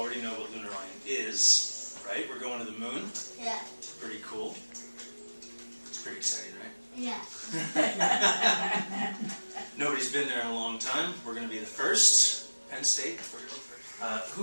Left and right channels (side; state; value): both; inverted; correlation -1.00